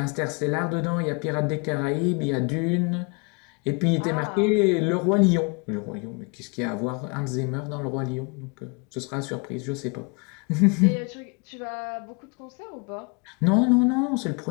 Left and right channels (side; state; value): right; quieter; 32.4 dB